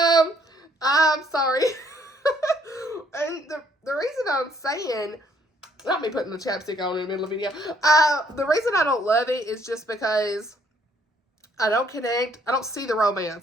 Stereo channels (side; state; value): both; normal; correlation 0.65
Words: sorry. And the reason I'm saying, not me putting the chapstick on in the middle of the video. The reason I don't love it is just because I don't connect. I don't see the